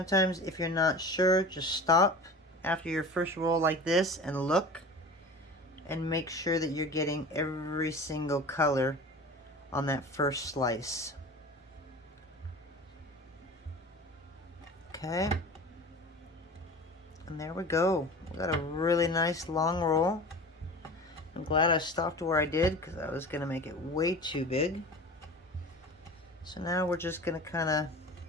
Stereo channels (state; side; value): normal; both; correlation 0.36